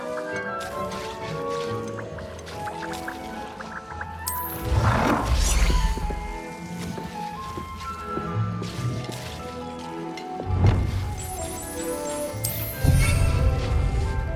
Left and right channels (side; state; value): both; identical; correlation 1.00